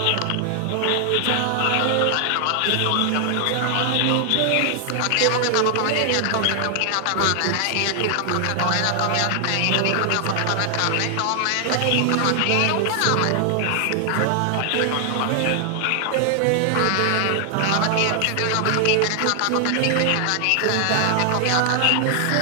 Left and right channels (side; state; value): both; different; correlation 0.00